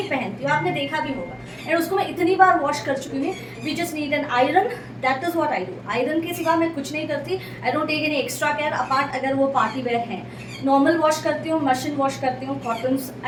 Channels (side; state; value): both; identical; correlation 1.00